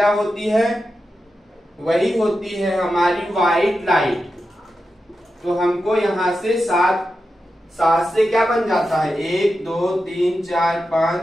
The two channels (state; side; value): normal; both; correlation 0.90